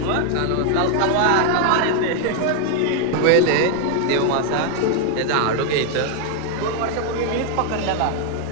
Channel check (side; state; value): both; different; correlation 0.00